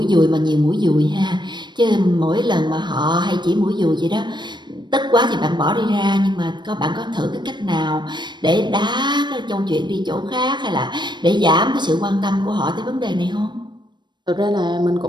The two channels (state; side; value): late; left; 0.22 ms